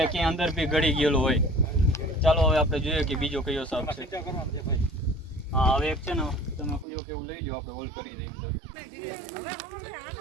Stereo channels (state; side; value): drops out; left; at 6.9 s